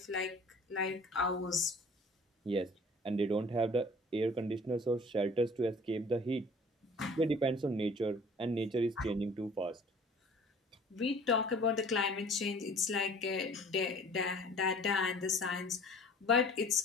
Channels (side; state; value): both; normal; correlation 0.49